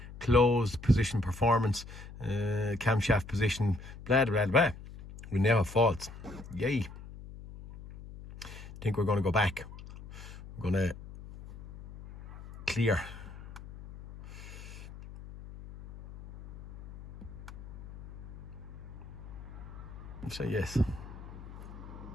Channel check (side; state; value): left; noise; hum, 14 dB below the sound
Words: closed position performance, camshaft position, blah blah blah. We now have faults. Yay. Think we're going to go back. We're going to clear. Say yes.